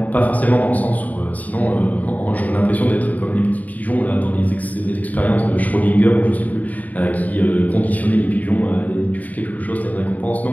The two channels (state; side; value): late; right; 0.075 ms